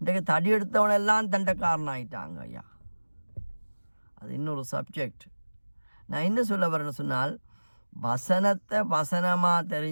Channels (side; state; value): both; inverted; correlation -1.00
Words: தடி எடுத்தவனெல்லாம் தண்டக்காரன் ஆகிட்டாங்க ஐயா. அது இன்னொரு சப்ஜெக்ட். நான் என்ன சொல்ல வரேன்னு சொன்னால், வசனத்தை வசனமாக